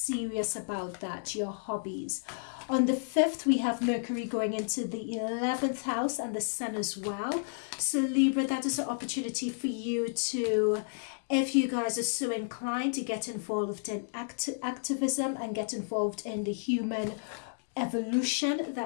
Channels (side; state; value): right; silent; digital silence